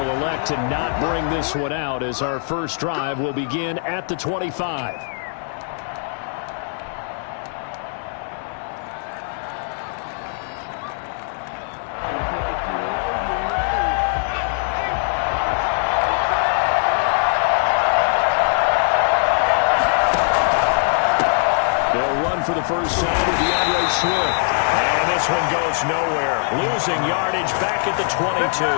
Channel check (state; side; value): silent; right; digital silence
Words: elect to not bring this one out as our first drive will begin at the 25. They'll run for the first time with DeAndre Swift. And this one goes nowhere. Losing yardage back at the 22.